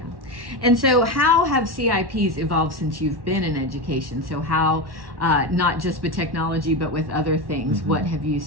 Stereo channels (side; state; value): left; late; 1.1 ms